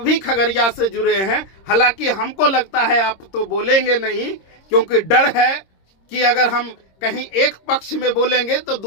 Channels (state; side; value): late; right; 26 ms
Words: खगड़िया से जुड़े हैं, हालांकि हमको लगता है आप तो बोलेंगे नहीं, क्योंकि डर है कि अगर हम कहीं एक पक्ष में बोलेंगे तो